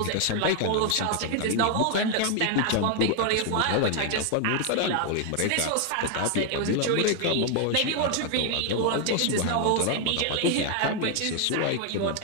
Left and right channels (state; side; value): different; both; correlation 0.00